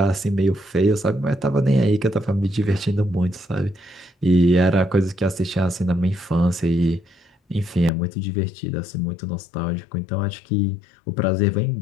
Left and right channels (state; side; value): drops out; right; at 7.9 s